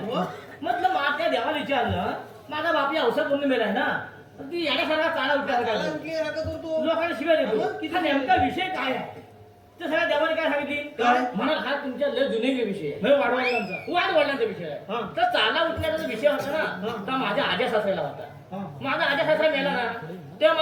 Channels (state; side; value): identical; both; correlation 1.00